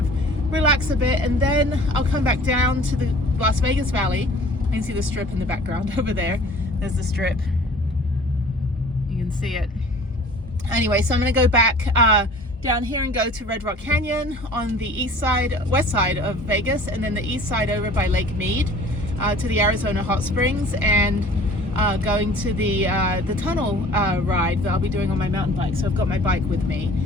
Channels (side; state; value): both; normal; correlation 0.47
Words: relax a bit, and then I'll come back down to the Las Vegas Valley. You can see the strip in the background over there. There's the strip. You can see it. Anyway, so I'm going to go back down here and go to Red Rock Canyon on the west side of Vegas, and then the east side over by Lake Mead to the Arizona Hot Springs, and going to the tunnel ride that I'll be doing on my mountain bike. So I've got my bike with me.